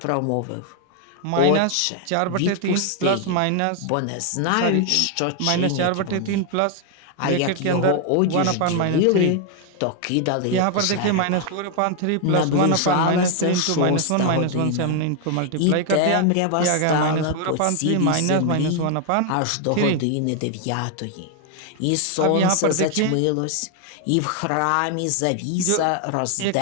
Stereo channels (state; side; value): different; both; correlation 0.00